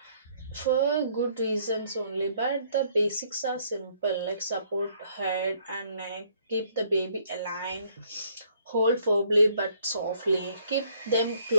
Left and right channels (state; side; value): inverted; both; correlation -0.64